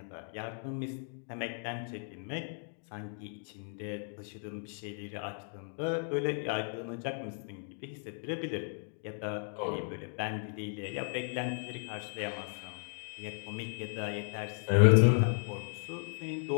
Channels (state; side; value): silent; right; 54 dB below the other